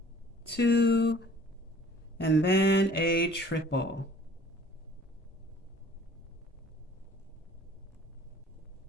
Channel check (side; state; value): both; normal; correlation 0.51